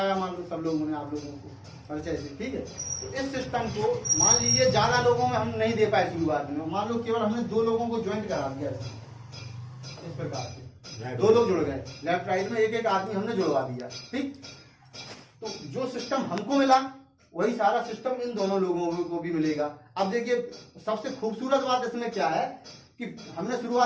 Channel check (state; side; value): identical; both; correlation 1.00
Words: मान लो सब लोगों ने, आप लोगों को परिचय से, ठीक है। तो इस सिस्टम को मान लीजिए ज्यादा लोगों में हम नहीं दे पाए शुरुआत में, मान लो केवल हमने 2 लोगों को ज्वाइन करा दिया इस प्रकार से, 2 लोग जुड़ गए, लेफ्ट राइट में एक आदमी हमने जुड़वा दिया, ठीक। तो जो सिस्टम हमको मिला वही सारा सिस्टम इन दोनों लोगों को भी मिलेगा। अब देखिए सबसे खूबसूरत बात इसमें क्या है कि हमने